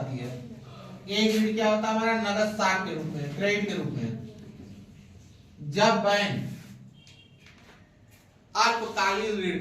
है। एक ऋण क्या होता है हमारा नगद साख के रूप में, क्रेडिट के रूप में। जब बैंक अल्पकालीन ऋण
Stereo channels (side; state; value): both; identical; correlation 1.00